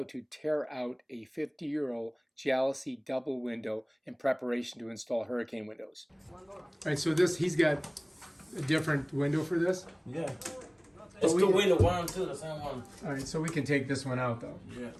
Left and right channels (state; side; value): identical; both; correlation 1.00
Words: to tear out a 50-euro Jalousie double window in preparation to install hurricane windows. Alright, so he's got a different window for this? Yeah. It's the window, one and two, the same one. Alright, so we can take this one out though. Yeah.